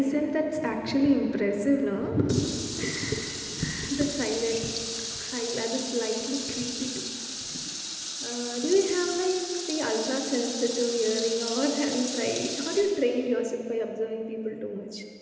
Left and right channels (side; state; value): both; identical; correlation 1.00